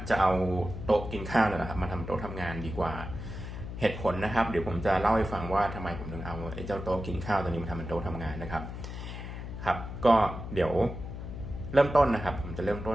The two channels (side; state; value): left; noise; hum, 8 dB below the sound